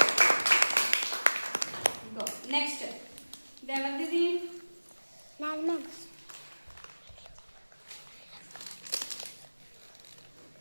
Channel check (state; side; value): inverted; both; correlation -1.00